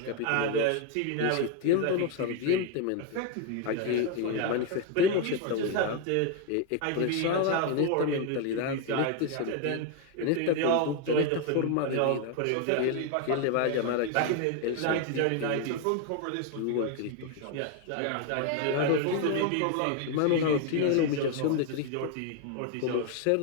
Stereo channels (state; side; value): different; both; correlation 0.01